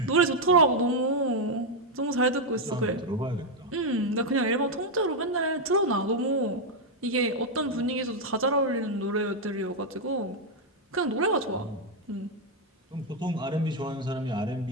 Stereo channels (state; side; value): normal; both; correlation 0.01